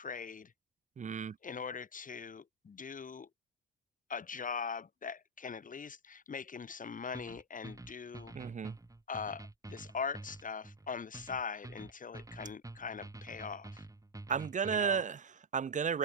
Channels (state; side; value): normal; both; correlation -0.05